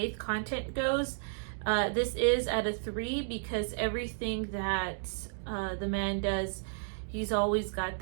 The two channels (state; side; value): silent; left; digital silence